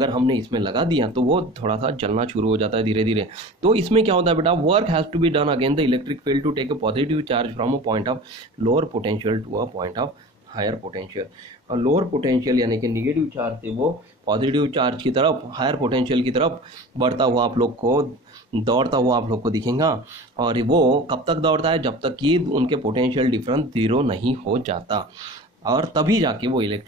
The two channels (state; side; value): normal; both; correlation 0.37